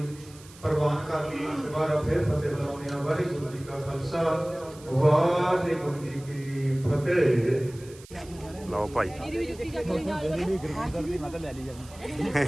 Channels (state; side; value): noise; right; hiss, 21 dB below the sound